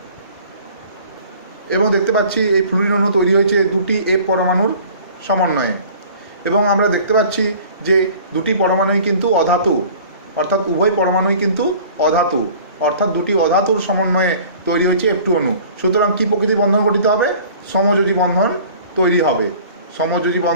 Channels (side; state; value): both; inverted; correlation -0.48